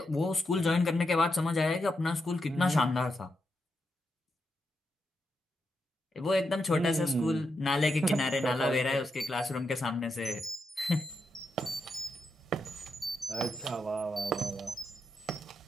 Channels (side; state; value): both; normal; correlation 0.84